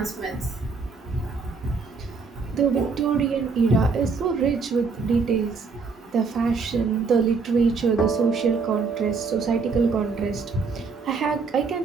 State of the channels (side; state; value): left; quieter; 4.7 dB